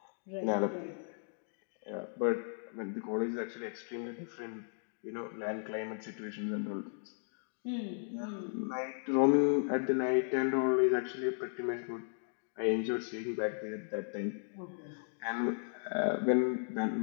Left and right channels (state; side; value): silent; right; digital silence